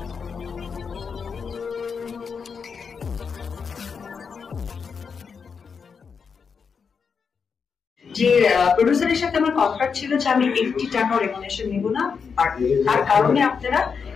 প্রডিউসারের সাথে আমার কন্ট্রাক্ট ছিল যে আমি 80 টাকা রেমুনেশন নিব না, আর তার কারণে আপনারা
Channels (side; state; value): right; quieter; 5.9 dB